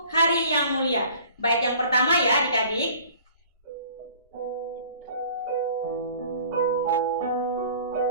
Hari yang Mulia. Bait yang pertama ya adik-adik.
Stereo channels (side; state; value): both; inverted; correlation -0.49